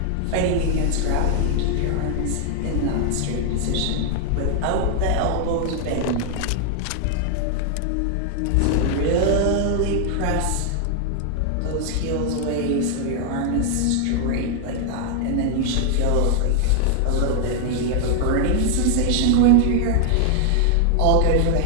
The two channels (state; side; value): different; both; correlation 0.00